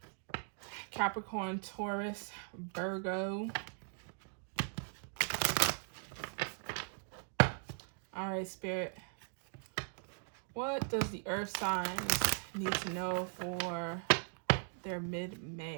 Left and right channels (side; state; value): left; silent; 52 dB below the other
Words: Capricorn, Taurus, Virgo. All right, Spirit. What does the Earth signs need to know for their